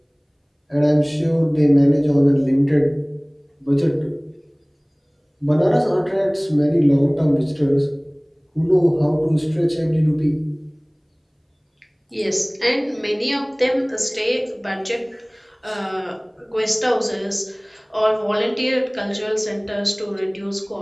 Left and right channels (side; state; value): both; identical; correlation 1.00